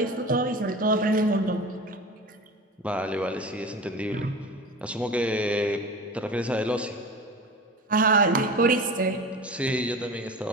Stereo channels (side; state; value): both; normal; correlation 0.33